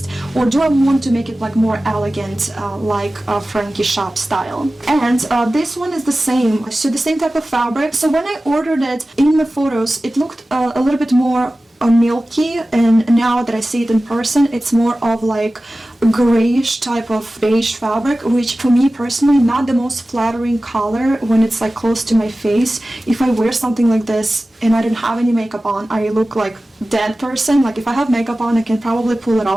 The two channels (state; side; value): normal; both; correlation 0.96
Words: or do I want to make it like more elegant like Frankie shop style? And this one is the same, so the same type of fabric. So when I ordered it in the photos, it looked a little bit more milky, and now that I see it in person, it's more of like grayish type of beige fabric, which for me personally not the most flattering color when it's like close to my face. If I wear something like this and I don't have any makeup on, I look like dead person. Like if I have makeup on, I can probably pull it